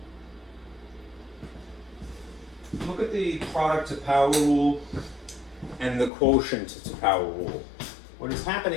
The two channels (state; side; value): drops out; right; at 6.1 s